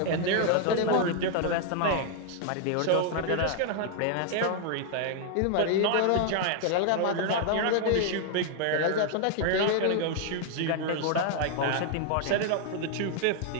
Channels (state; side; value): different; both; correlation 0.00